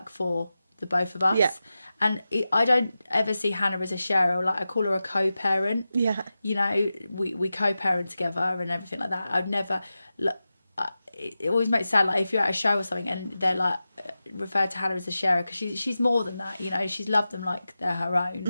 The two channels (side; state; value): both; inverted; correlation -0.93